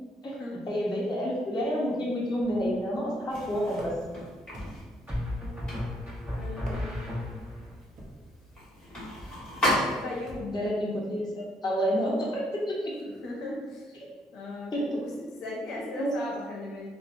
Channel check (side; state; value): both; normal; correlation 0.71